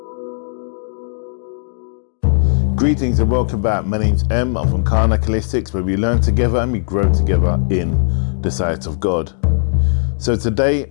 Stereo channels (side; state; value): right; silent; digital silence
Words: Greetings and welcome back. My name's M. I'm from Karnak Holistics, where we learn together and we grow together in the sight of God. So today